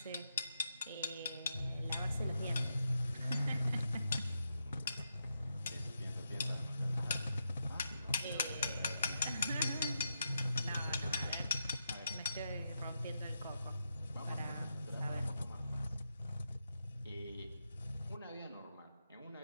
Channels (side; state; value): both; inverted; correlation -0.85